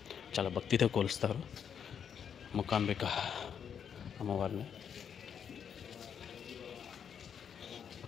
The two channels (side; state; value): right; quieter; 7.8 dB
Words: చాలా భక్తితో కొలుస్తారు మూకాంబిక అమ్మవారిని.